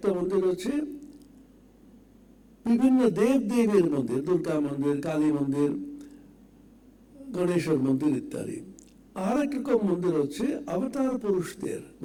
মন্দির হচ্ছে বিভিন্ন দেব দেবীর মন্দির, দুর্গা মন্দির, কালী মন্দির, গণেশের মন্দির ইত্যাদি। আর এক রকম মন্দির হচ্ছে অবতার পুরুষদের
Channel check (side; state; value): both; identical; correlation 1.00